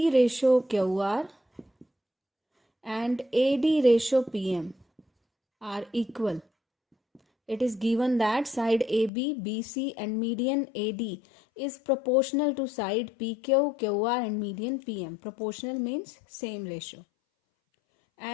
ratio QR and AD ratio PM are equal. It is given that side AB, BC and median AD is proportional to side PQ, QR and median PM. Proportional means same ratio.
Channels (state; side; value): drops out; right; at 9.1 s